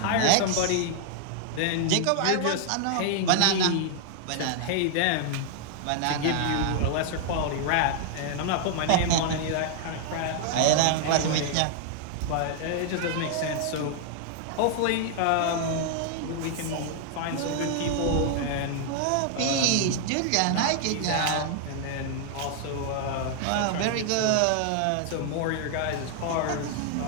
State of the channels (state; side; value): different; both; correlation 0.00